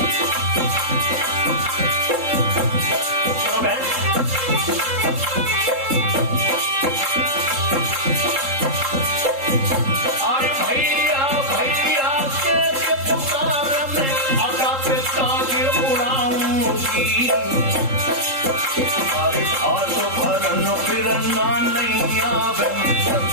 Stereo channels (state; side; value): late; left; 3.7 ms